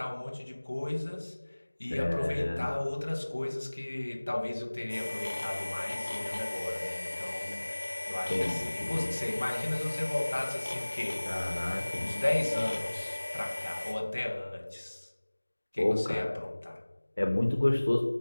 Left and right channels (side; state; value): both; inverted; correlation -1.00